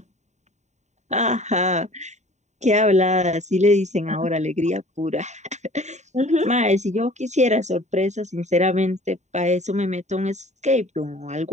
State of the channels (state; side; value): late; left; 0.34 ms